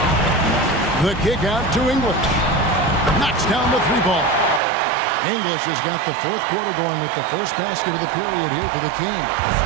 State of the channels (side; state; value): left; drops out; at 4.6 s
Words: The kick out to English. Knocks down the three ball. English has got the fourth quarter going with the first basket of the period here for the Kings.